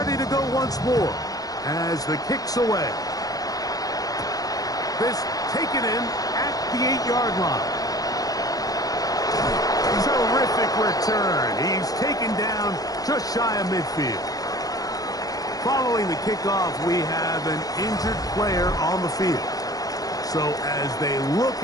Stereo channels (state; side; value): late; right; 0.18 ms